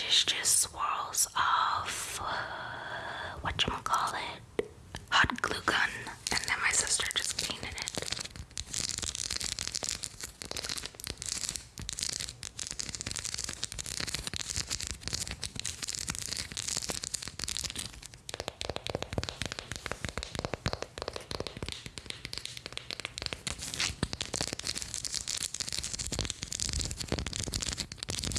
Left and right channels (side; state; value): both; identical; correlation 1.00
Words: is just swirls of whatchamacallit, hot glue gun, and then my sister just painted it.